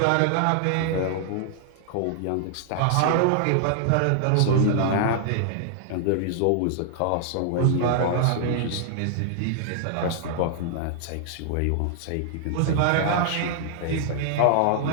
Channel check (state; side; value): different; both; correlation 0.00